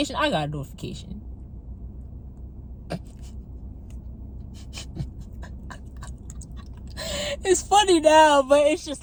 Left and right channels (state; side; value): identical; both; correlation 1.00